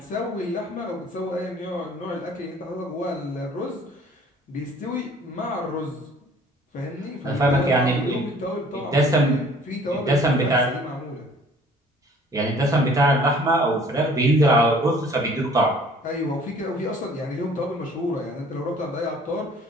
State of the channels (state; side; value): normal; both; correlation 0.53